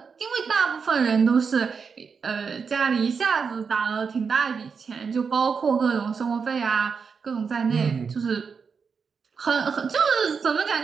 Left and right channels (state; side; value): quieter; left; 5.7 dB